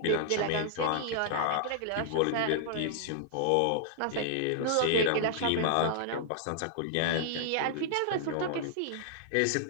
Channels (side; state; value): both; different; correlation -0.01